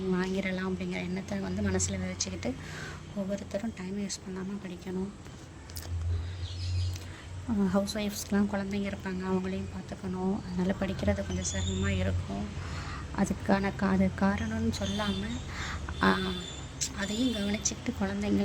வாங்கிடலாம் அப்படிங்கிற எண்ணத்தை வந்து மனசில் விதைச்சிக்கிட்டு ஒவ்வொருத்தரும் டைம் வேஸ்ட் பண்ணாமல் படிக்கணும். ஹவுஸ் ஒய்ஃப்ஸ்க்கெலாம் குழந்தைங்க இருப்பாங்க, அவங்களையும் பார்த்துக்கணும். அதனால் படிக்கிறது கொஞ்சம் சிரமமாக இருக்கும். அதுக்கான காரணம்னு சொல்லாமல் அதையும் கவனிச்சுக்கிட்டு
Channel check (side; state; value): both; identical; correlation 1.00